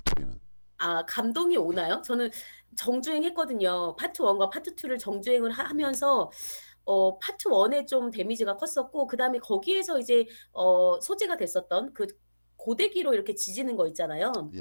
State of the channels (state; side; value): inverted; both; correlation -1.00